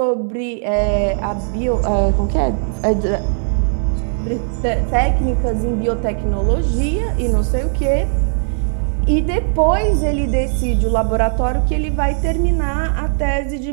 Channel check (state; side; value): silent; left; digital silence